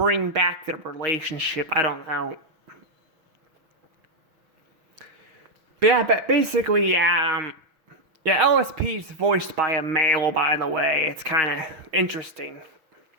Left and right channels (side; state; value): left; late; 6.4 ms